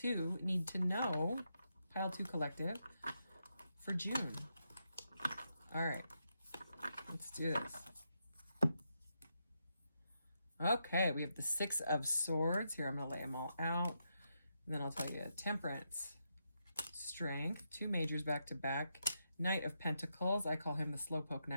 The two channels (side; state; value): both; inverted; correlation -0.83